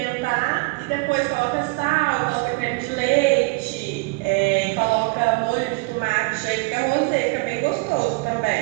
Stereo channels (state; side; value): quieter; left; 27.9 dB